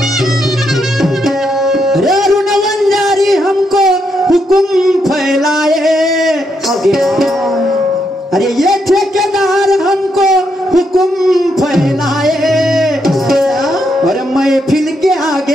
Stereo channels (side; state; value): both; normal; correlation 0.79